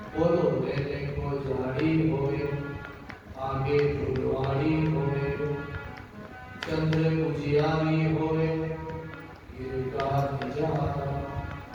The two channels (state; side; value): identical; both; correlation 1.00